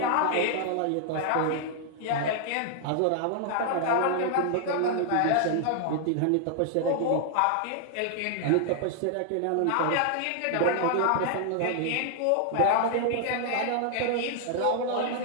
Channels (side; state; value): both; different; correlation 0.00